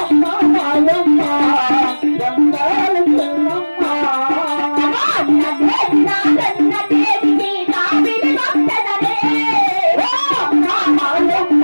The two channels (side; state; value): both; inverted; correlation -1.00